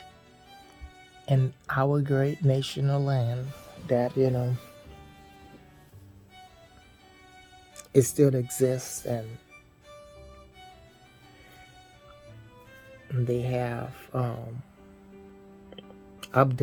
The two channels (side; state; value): both; identical; correlation 1.00